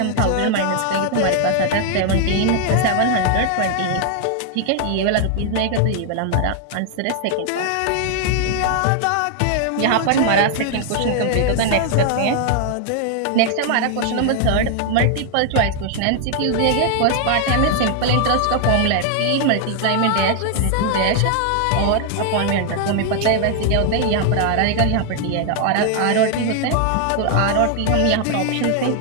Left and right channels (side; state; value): both; different; correlation 0.00